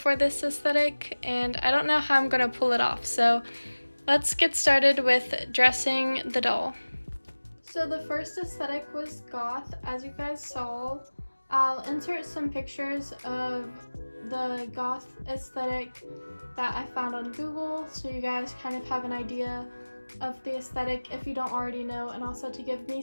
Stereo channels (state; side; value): inverted; both; correlation -1.00